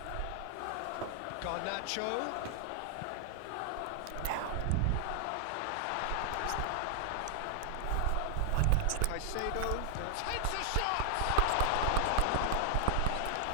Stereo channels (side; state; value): both; different; correlation 0.00